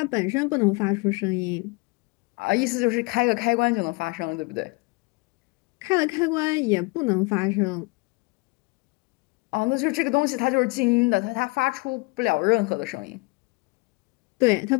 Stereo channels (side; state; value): right; quieter; 27.8 dB